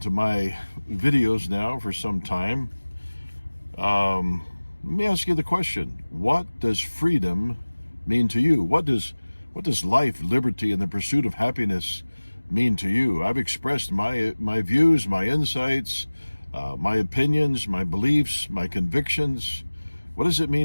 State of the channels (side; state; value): both; inverted; correlation -1.00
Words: to my videos now for some time, let me ask you the question: what does freedom mean to you? What does life, liberty, and the pursuit of happiness mean to you? I've expressed my views, my insights, my opinions, my beliefs, my convictions. What does it